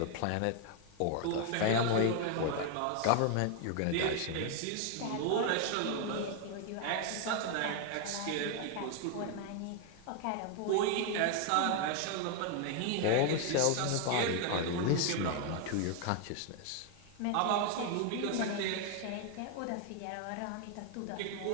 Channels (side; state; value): both; different; correlation 0.01